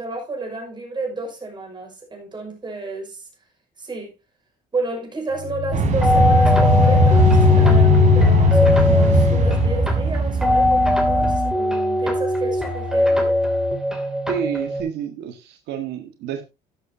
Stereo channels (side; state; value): both; normal; correlation 0.59